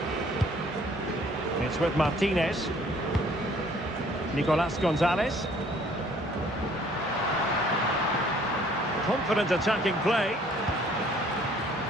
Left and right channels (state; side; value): normal; both; correlation 0.58